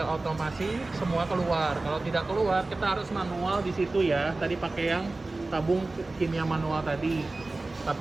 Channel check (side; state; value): left; quieter; 3.2 dB